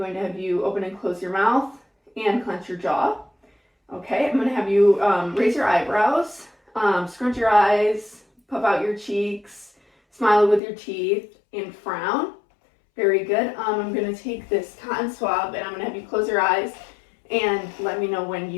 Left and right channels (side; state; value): right; drops out; at 10.6 s